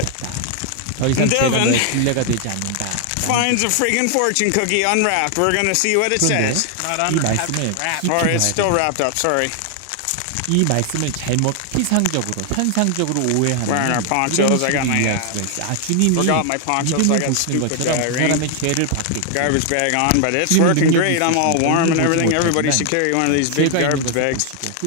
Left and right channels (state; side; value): different; both; correlation 0.00